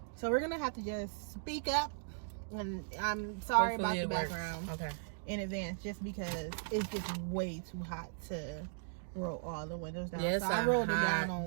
So we're gonna have to just speak up. And I'm sorry Hopefully about the it works. background Okay. in advance, just because it's just way too hot to roll all the windows down. Yes, so I rolled it down hot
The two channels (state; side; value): silent; left; digital silence